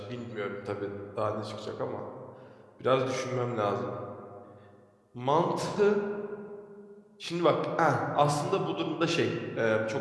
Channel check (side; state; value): both; identical; correlation 1.00